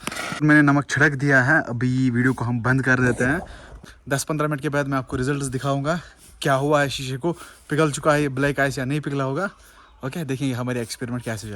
मैंने नमक छिड़क दिया है, अभी वीडियो को हम बंद कर देते हैं। 10-15 मिनट के बाद मैं आपको रिजल्ट्स दिखाऊंगा, क्या हुआ है शीशे को, पिघल चुका है ये ब्लैक आइस या नहीं पिघला होगा। ओके, देखेंगे हमारी एक्सपेरिमेंट कैसे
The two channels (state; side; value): identical; both; correlation 1.00